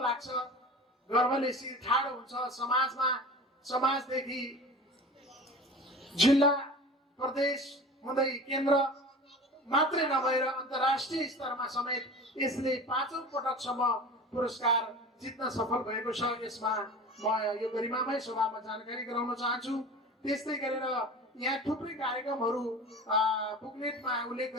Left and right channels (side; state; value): both; normal; correlation 0.36